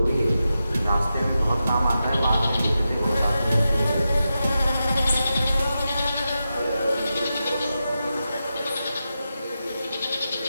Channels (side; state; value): both; inverted; correlation -0.90